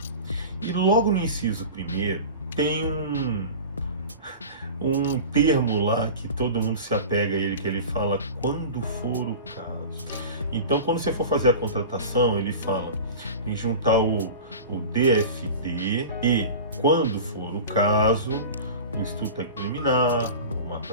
E logo no inciso 1º tem um termo lá que todo mundo se apega a ele, que ele fala quando for o caso. Então, quando você for fazer a contratação, ele fala em juntar o DFT e, quando for o caso, o estudo técnico preliminar, o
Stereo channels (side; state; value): both; inverted; correlation -0.34